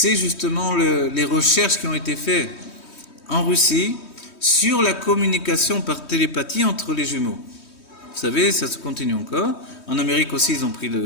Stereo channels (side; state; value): right; late; 3.2 ms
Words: justement les recherches qui ont été faites en Russie sur la communication par télépathie entre les jumeaux. Vous savez, ça se continue encore. En Amérique aussi, ils ont pris